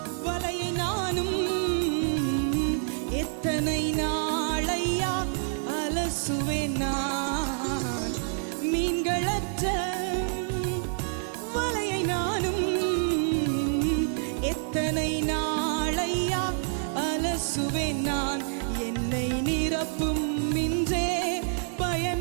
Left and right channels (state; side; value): silent; left; digital silence